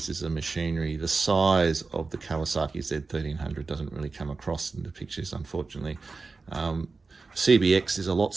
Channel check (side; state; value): left; quieter; 4.1 dB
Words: of machinery. The size of the Kawasaki Z1300 doesn't really come across in the pictures, unfortunately. CBX is a lot